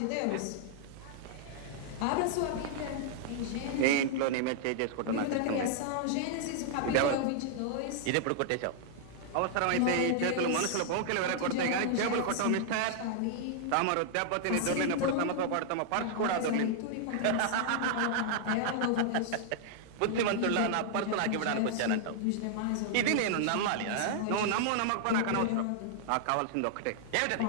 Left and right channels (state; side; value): different; both; correlation -0.01